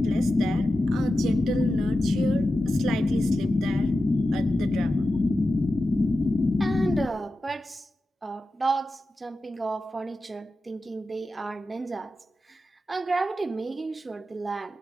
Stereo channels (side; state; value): both; normal; correlation 0.92